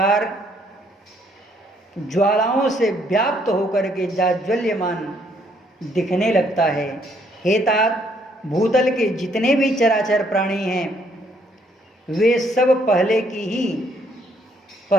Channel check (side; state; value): both; normal; correlation 0.68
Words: ज्वालाओं से व्याप्त होकर के जाज्वल्यमान दिखने लगता है। हे तात, भूतल के जितने भी चराचर प्राणी हैं वे सब पहले